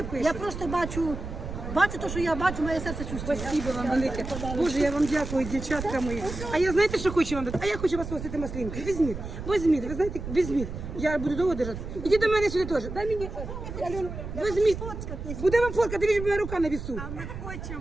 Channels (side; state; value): right; noise; rumble, 8 dB below the sound